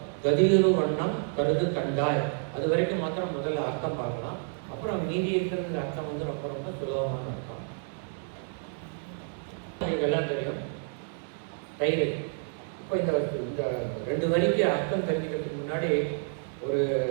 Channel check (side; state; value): left; silent; 58 dB below the other